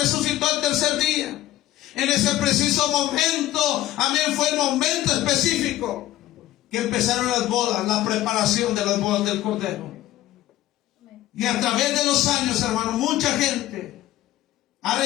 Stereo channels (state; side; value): quieter; right; 14.5 dB